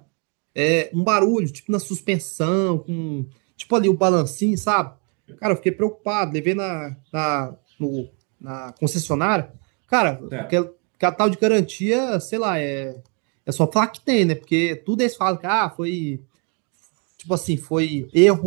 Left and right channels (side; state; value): left; quieter; 36.4 dB